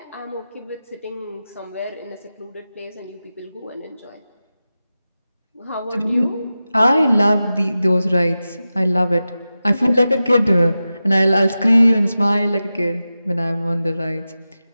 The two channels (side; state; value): both; inverted; correlation -0.94